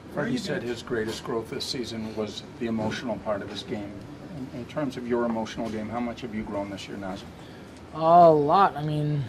Freddie said his greatest growth this season was the emotional part of his game. In terms of your emotional game, how much have you grown this year, Nazem? A lot. I mean,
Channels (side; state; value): both; identical; correlation 1.00